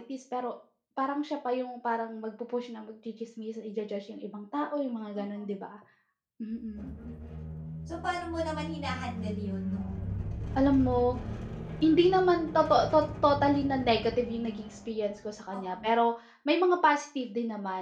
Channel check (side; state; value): both; identical; correlation 1.00